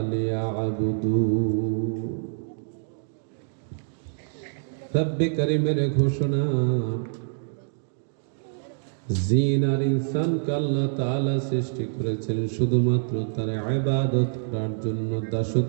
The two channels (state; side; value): silent; left; digital silence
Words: লিয়াবুদুন। রব্বে করিমের ঘোষণা, জিন আর ইনসানকে আল্লাহ তাআলা সৃষ্টি করেছেন শুধুমাত্র তার ইবাদত করার জন্য,